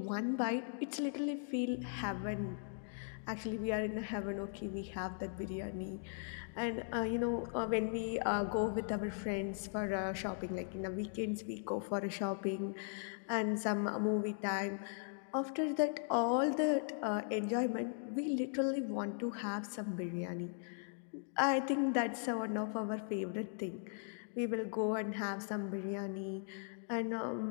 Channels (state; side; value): silent; right; digital silence